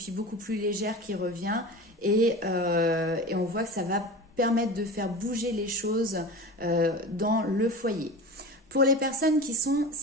beaucoup plus légère qui revient et on voit que ça va permettre de faire bouger les choses dans le foyer. Pour les personnes qui sont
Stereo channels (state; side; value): normal; both; correlation 0.32